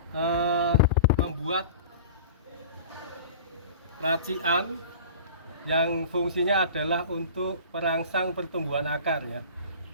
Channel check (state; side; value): inverted; both; correlation -0.39